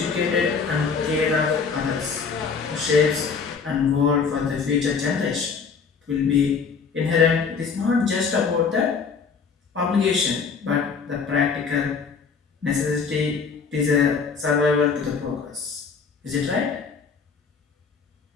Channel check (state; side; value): quieter; right; 5.5 dB